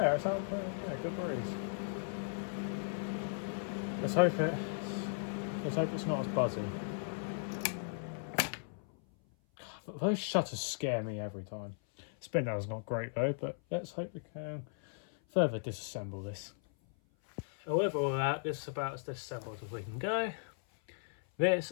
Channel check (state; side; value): silent; right; 53 dB below the other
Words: it's out, yeah, good breeze. Let's hope it's not as buzzy. But those shutters scare me every time. Spin down's not great though, but let's hope we can further disassemble this. And with all that, this is about as disassembled as we can go. This,